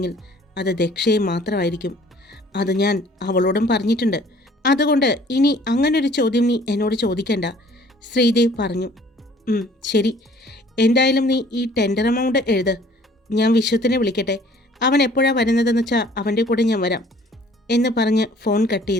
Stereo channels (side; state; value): both; normal; correlation 0.54